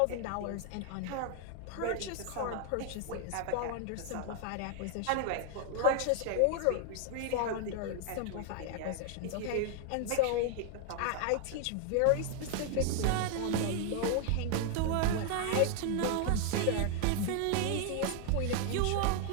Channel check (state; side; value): different; both; correlation 0.00